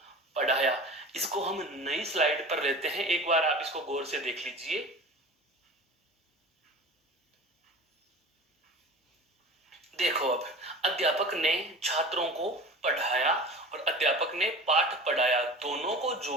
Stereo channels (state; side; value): normal; both; correlation 0.36